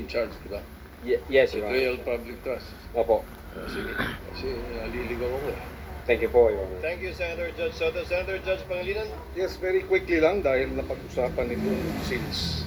charge, di ba? yes, Your Betrayal Honor. of public trust. Opo. Sige. Kasi naliligaw ako eh. Thank you po, Your Honor. Thank you, Senator Judge Soto. Senator Judge Pangilinan. Yes, very quickly lang dahil napag-usapan ito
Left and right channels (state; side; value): identical; both; correlation 1.00